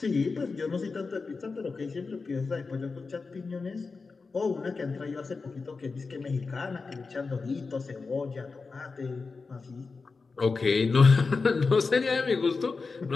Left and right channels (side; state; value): right; quieter; 4.4 dB